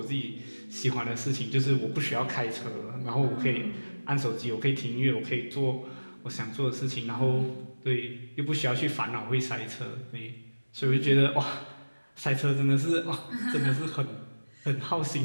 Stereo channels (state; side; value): inverted; both; correlation -1.00